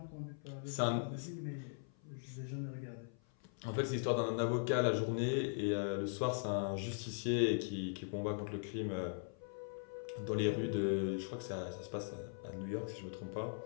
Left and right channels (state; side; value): silent; right; 51 dB below the other